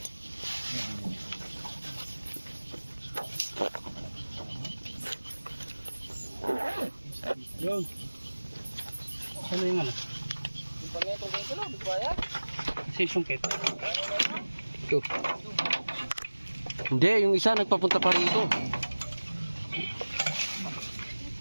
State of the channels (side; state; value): both; inverted; correlation -1.00